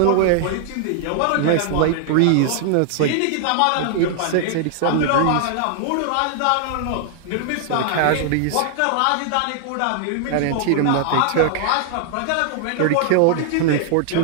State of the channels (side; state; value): both; different; correlation -0.01